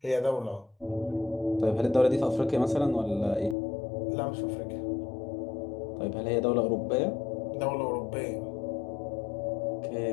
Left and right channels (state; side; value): drops out; right; at 3.6 s